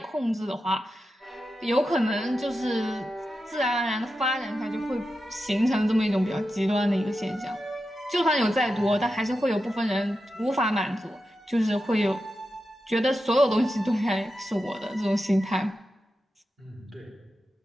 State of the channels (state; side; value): normal; both; correlation 0.90